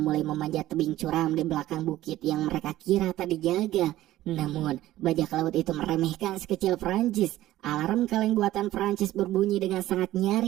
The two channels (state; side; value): quieter; left; 14.9 dB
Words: mulai memanjat tebing curam di belakang bukit yang mereka kira tak dijaga. Namun, bajak laut itu meremehkan sekecil Prancis. Alarm kaleng buatan Prancis berbunyi dengan sangat